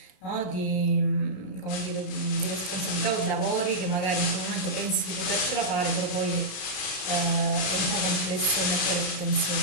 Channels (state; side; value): late; right; 32 ms